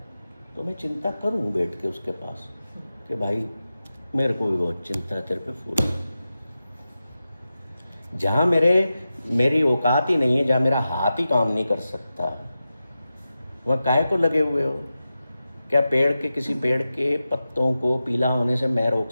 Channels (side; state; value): both; inverted; correlation -0.93